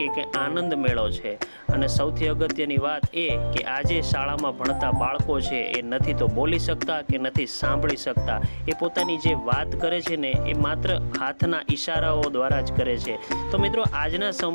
આનંદ મેળો છે। અને સૌથી અગત્યની વાત એ કે આજે શાળામાં ભણતા બાળકો છે એ નથી તો બોલી શકતા કે નથી સાંભળી શકતા। એ પોતાની જે વાત કરે છે ને એ માત્ર હાથના ઈશારાઓ દ્વારા જ કરે છે। તો મિત્રો, આજના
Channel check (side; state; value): both; inverted; correlation -1.00